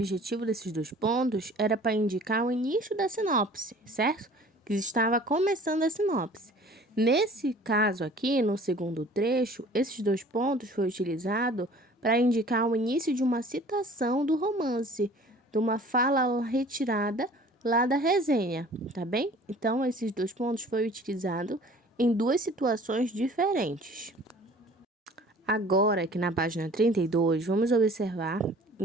desses dois pontos era para indicar o início da sinopse, certo? Que estava começando a sinopse. Nesse caso aqui, no segundo trecho, esses dois pontos foram utilizados para indicar o início de uma citação do romance, de uma fala retirada lá da resenha, tá bem? Então, esses dois pontos foram utilizados em duas situações diferentes. Agora, aqui na página 32, vamos observar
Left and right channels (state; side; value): normal; both; correlation 0.49